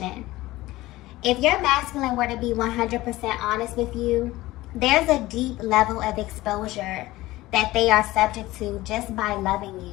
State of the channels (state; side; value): quieter; right; 18.0 dB